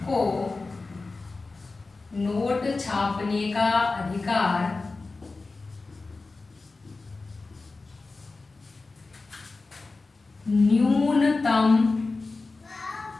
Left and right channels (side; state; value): right; quieter; 3.7 dB